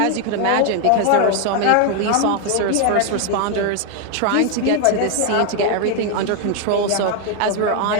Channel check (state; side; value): different; both; correlation 0.01